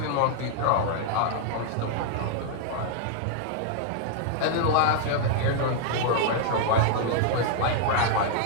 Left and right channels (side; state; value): both; different; correlation -0.01